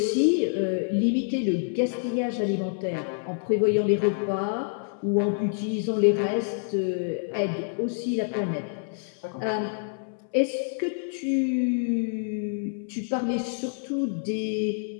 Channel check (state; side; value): silent; right; 60 dB below the other